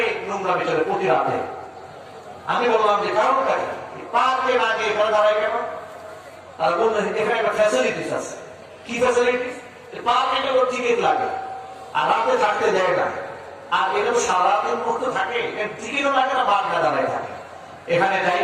নোংরা বিচারে প্রতি রাতে। আমি বললাম যে কারণটা কি, পার্কে না গিয়ে এখানে দাঁড়ায় কেন? তারা বললেন এখানে একটা ফ্যাসিলিটিস আছে। কি ফ্যাসিলিটিস? পার্কে টিকিট লাগে আর রাতে থাকতে দেয় না। আর এরকম সারাদিন মুক্ত থাকে, টিকিটও লাগে না, বাদ না দাঁড়ায় থাকে, এখানে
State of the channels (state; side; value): identical; both; correlation 1.00